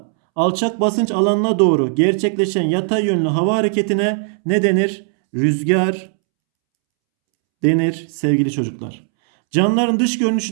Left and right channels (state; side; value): silent; left; 68 dB below the other